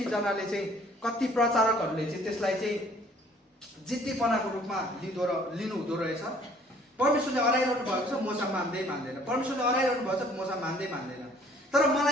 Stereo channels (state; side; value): normal; both; correlation 0.57